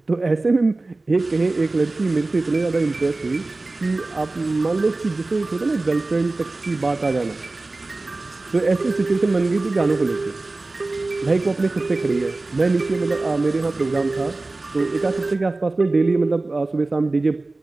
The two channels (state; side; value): quieter; left; 3.2 dB